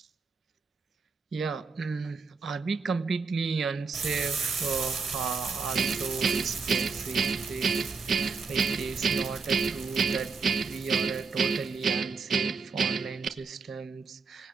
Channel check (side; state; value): left; quieter; 4.9 dB